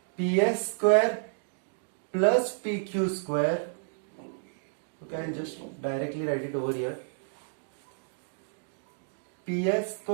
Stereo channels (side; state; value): left; silent; digital silence